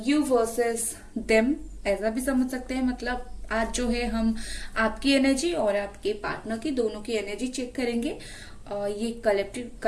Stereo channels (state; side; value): identical; both; correlation 1.00